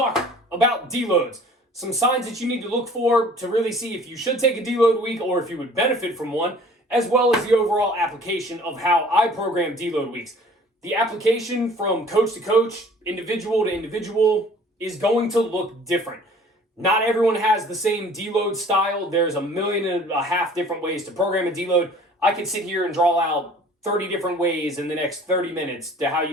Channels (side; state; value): both; normal; correlation 0.50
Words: about deloads. Some signs that you need to look for to really see if you should take a deload week or if you would benefit from one, as well as the overall application of how I program deload weeks. The application from coach to coach, individual to individual, is going to look different. Not everyone has the same deload style. There's 1.5 million different ways to program a deload. I could sit here and draw out 30 different ways in the next 30 minutes to how